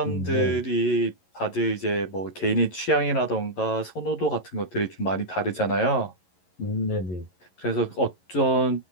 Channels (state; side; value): late; right; 11 ms